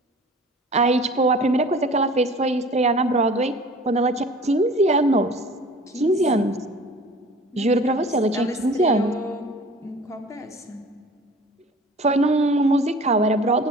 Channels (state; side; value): normal; both; correlation 0.45